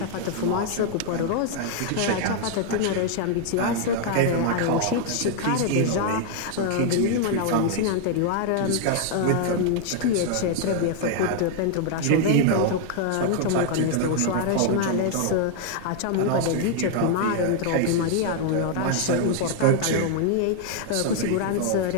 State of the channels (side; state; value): both; different; correlation 0.00